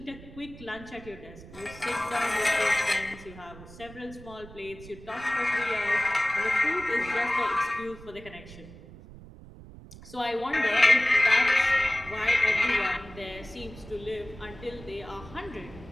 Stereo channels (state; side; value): noise; right; rumble, 17 dB below the sound